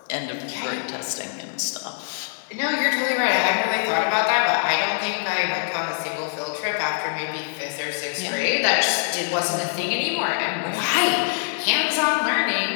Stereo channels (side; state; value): right; silent; digital silence